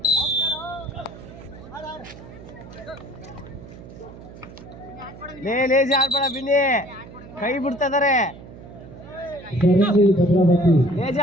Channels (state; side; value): noise; right; hum, 17 dB below the sound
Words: ಲೇಜಿ ಆಡ್ಬೇಡ ಬಿನ್ನಿ ಕೈ ಬಿಡ್ತಿದಾರೆ ಲೇಜಿ